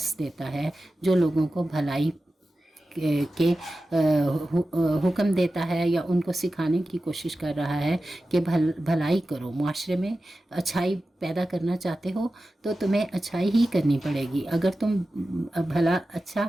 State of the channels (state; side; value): normal; both; correlation 0.94